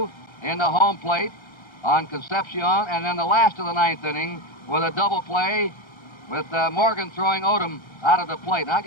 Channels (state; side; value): late; right; 1.3 ms